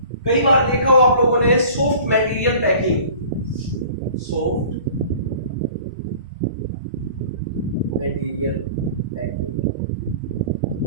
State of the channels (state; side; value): inverted; both; correlation -0.45